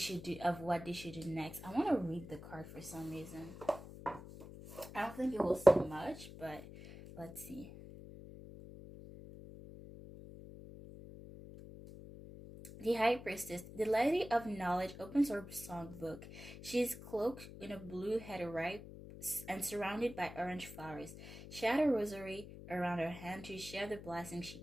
do next. I want to read the card for some reason. I don't think it will say much, but let's see. The High Priestess, the Lady of Knowledge, opens her songbook. She is cloaked in a blue head and surrounded by orange flowers. She had a rosary around her hand to share the blessings she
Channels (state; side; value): noise; left; hum, 14 dB below the sound